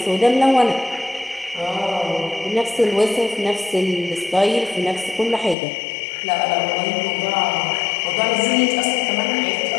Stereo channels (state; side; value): drops out; right; at 5.6 s